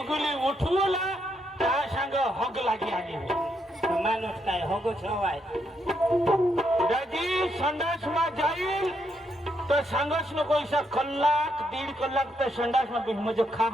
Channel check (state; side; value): normal; both; correlation 0.78